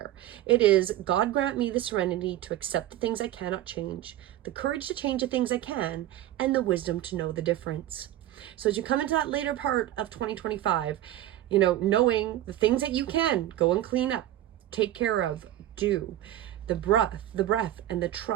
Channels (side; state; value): left; quieter; 13.4 dB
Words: It is, God grant me the serenity to accept the things I cannot change, the courage to change the things I can, and the wisdom to know the difference. So as you come into that later part of 2025, knowing the things that you can go and clean up, take care of, do, the breath and the